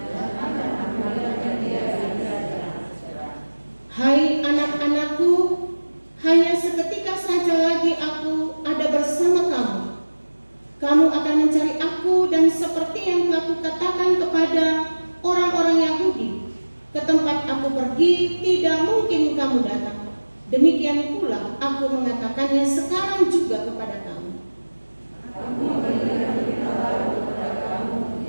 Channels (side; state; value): both; inverted; correlation -1.00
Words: Hai anak-anakku, hanya seketika saja lagi aku ada bersama kamu. Kamu akan mencari aku, dan seperti yang telah kukatakan kepada orang-orang Yahudi, ke tempat aku pergi tidak mungkin kamu datang. Demikian pula aku mengatakannya sekarang juga kepada kamu.